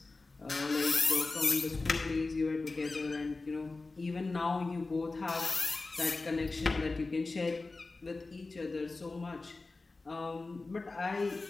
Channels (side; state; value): right; quieter; 3.5 dB